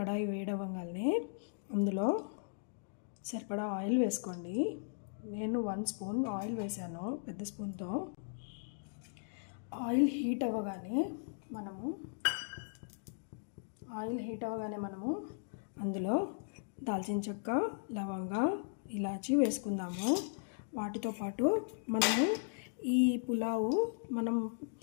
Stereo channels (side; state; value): right; silent; digital silence